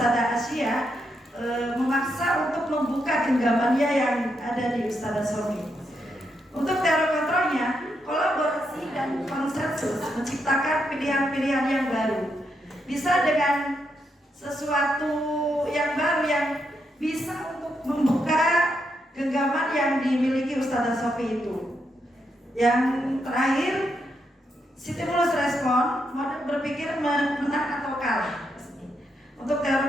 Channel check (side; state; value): both; normal; correlation 0.81